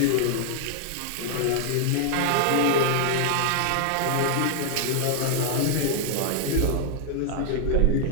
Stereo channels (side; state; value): both; different; correlation 0.00